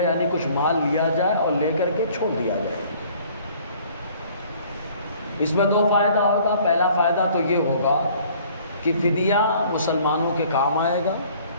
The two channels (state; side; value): inverted; both; correlation -0.55